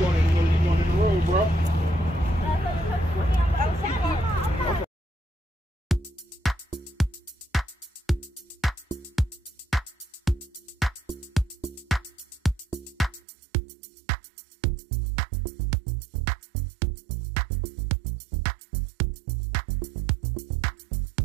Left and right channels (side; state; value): left; drops out; at 13.2 s